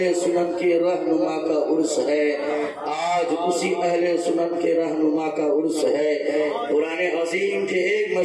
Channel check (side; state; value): both; identical; correlation 1.00